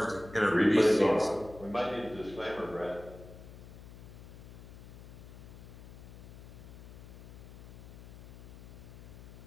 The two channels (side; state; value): left; noise; hum, 15 dB below the sound